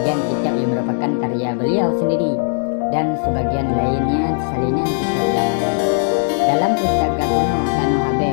kitab yang merupakan karya beliau sendiri dan sebagian lainnya salinan kitab ulama. Dalam pustaka kuno Tanah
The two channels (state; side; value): silent; right; digital silence